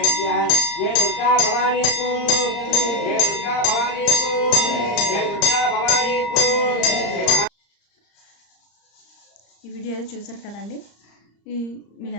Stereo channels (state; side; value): late; right; 35 ms